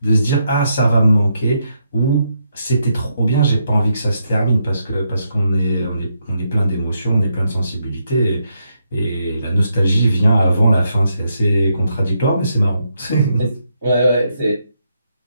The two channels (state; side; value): inverted; both; correlation -0.79